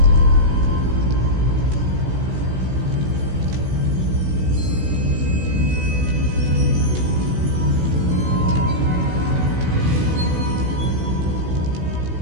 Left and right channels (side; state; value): left; late; 16 ms